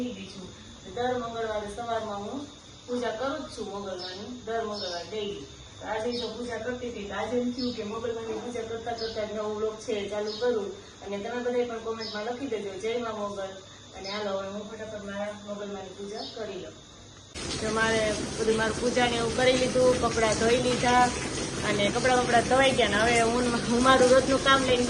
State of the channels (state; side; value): identical; both; correlation 1.00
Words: ગઈ છું. દર મંગળવારે સવારમાં હું પૂજા કરું જ છું મંગળવારની, દર મંગળવાર ડેઈલી. આજે જો પૂજા કરતી હતી આજે એમ થયું કે મંગળવારની પૂજા કરતા કરતા નવો વ્લોગ છે ચાલુ કરું. અને તમે બધા પણ કોમેન્ટમાં લખી દેજો જય માં મોગલ. અને હાલો હવે હું ફટાફટ મારા મોગલમાંની પૂજા કરી લઉં. તો મારે બધું મારું પૂજાને એવું કરી લીધું, કપડાં ધોઈ લીધા અને કપડાં ધોઈ ગયા. ને હવે હું મારું રોજનું કામ લઈને